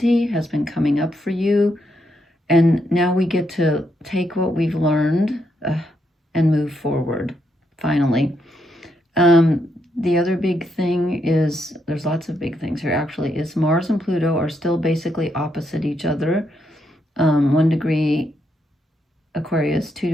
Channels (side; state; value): both; normal; correlation 0.79